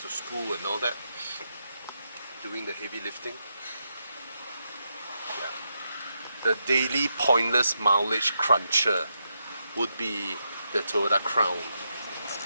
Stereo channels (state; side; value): inverted; both; correlation -0.83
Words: to school and all that, doing the heavy lifting. Yeah. The daily pointless mileage cruncher would be the Toyota Crown.